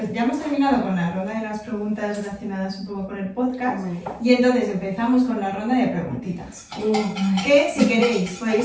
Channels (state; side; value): identical; both; correlation 1.00